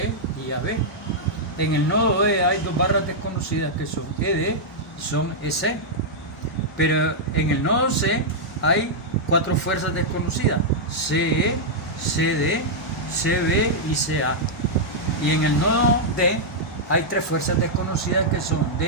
y AB. En el nodo E hay dos barras desconocidas que son ED y son EC. Pero en el nodo C hay cuatro fuerzas desconocidas: CE, CD, CB y CA. Y en el nodo D hay tres fuerzas desconocidas que son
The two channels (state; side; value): normal; both; correlation -0.06